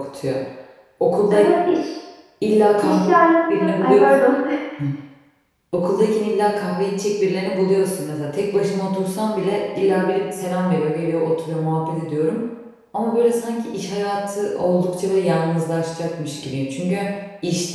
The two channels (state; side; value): identical; both; correlation 1.00